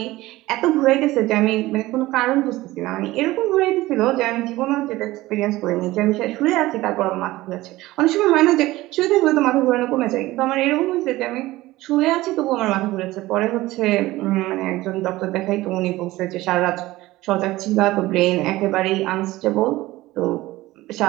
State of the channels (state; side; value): quieter; left; 18.0 dB